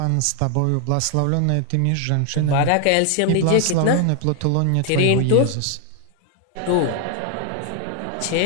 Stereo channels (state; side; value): different; both; correlation 0.00